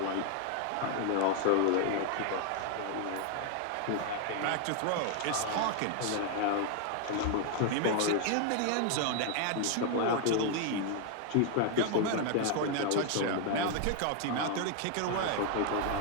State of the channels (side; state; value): both; different; correlation 0.00